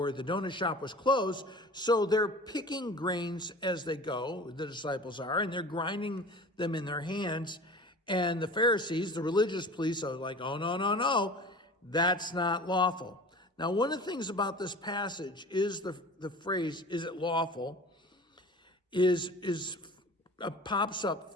the donut shop was closed. So they're picking grains as they go, the disciples are, and they're grinding them in their hands. And the Pharisees, the religious police, are like, oh, no, that's not lawful. Now, one of the things about this passage is the phrase, is it lawful, pops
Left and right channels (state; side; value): normal; both; correlation 0.39